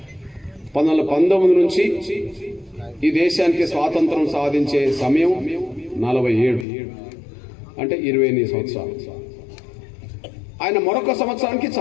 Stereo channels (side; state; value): right; drops out; at 6.7 s